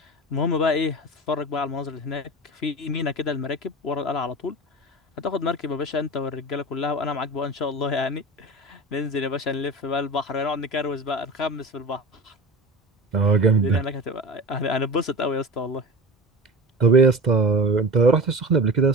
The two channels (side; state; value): both; normal; correlation 0.32